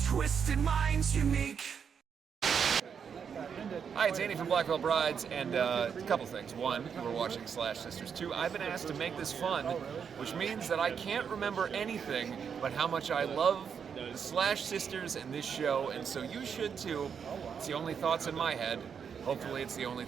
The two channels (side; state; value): left; quieter; 7.0 dB